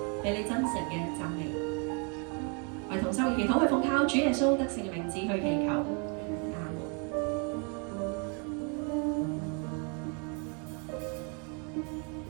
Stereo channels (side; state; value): left; quieter; 36.7 dB